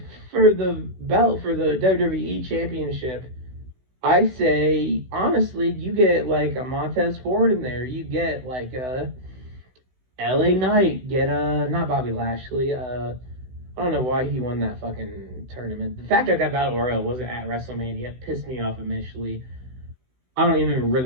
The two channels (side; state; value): left; late; 16 ms